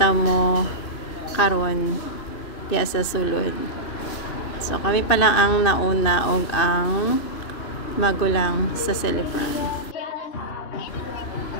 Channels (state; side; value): late; right; 3.0 ms